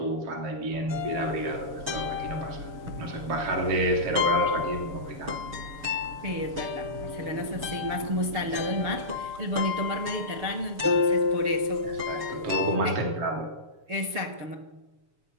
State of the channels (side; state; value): left; late; 7.0 ms